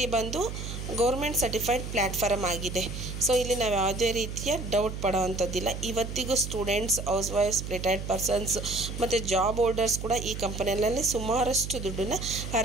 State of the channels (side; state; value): right; noise; hum, 7 dB below the sound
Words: ಬಂದು ಗೌರ್ಮೆಂಟ್ ಸರ್ಟಿಫೈಡ್ ಪ್ಲ್ಯಾಟ್ಫಾರ್ಮ್ ಆಗಿದೆ. ಸೊ ಇಲ್ಲಿ ನಾವು ಯಾವುದೇ ರೀತಿಯ ಡೌಟ್ ಪಡೋವಂಥದ್ದಿಲ್ಲ. ಇವತ್ತಿಗೂ students, house wives, retired persons ಮತ್ತು ಜಾಬ್ ಹೋಲ್ಡರ್ಸ್ ಕೂಡ ಈ ಕಂಪನಿಯಲ್ಲಿ ಸುಮಾರಷ್ಟು ದುಡ್ಡನ್ನು